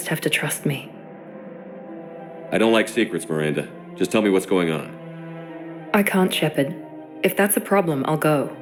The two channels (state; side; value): identical; both; correlation 1.00